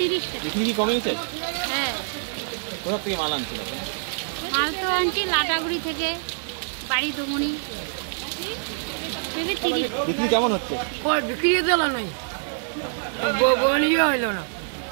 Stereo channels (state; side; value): silent; left; digital silence